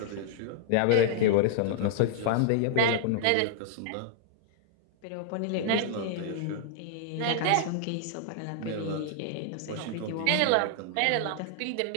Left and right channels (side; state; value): both; different; correlation -0.01